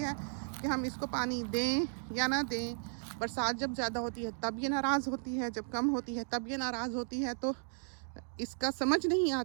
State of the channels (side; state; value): left; silent; digital silence